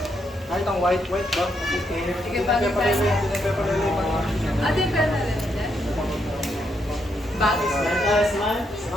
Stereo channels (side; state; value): both; normal; correlation 0.78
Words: Kahit ang white ba? Okay. Sige, bagay pa rin. Ate, pera na rin. Bagay. Smile tayo, smile.